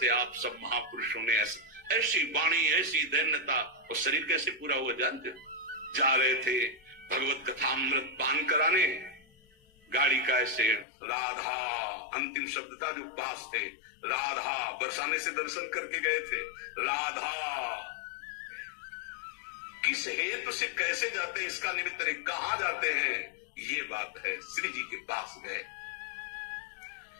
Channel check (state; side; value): drops out; right; at 10.9 s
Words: आप सब महापुरुषों ने ऐसी वाणी, ऐसी दैन्यता, और शरीर कैसे पूरा हुआ जानते? जा रहे थे भगवत कथामृत पान कराने, गाड़ी का ऐसे राधा अंतिम शब्द था जो पास थे, राधा बरसाने से दर्शन करके गए थे। राधा किस हेतु से कैसे जाते हैं, इसका निमित्त नहीं, कहां जाते हैं ये बात है। श्री जी के पास गए।